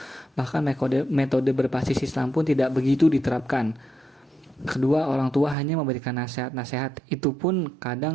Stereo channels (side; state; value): left; drops out; at 5.6 s